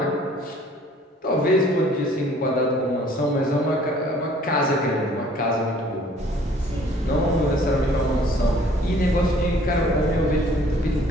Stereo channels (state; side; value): normal; both; correlation 0.56